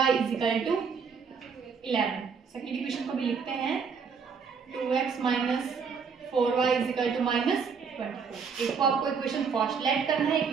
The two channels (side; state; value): left; quieter; 5.9 dB